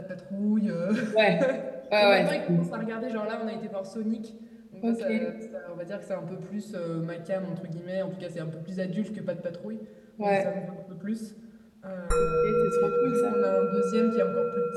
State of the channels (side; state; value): both; identical; correlation 1.00